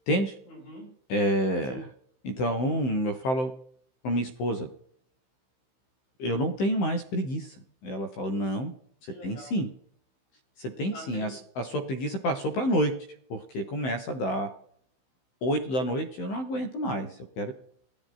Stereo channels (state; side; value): late; right; 15 ms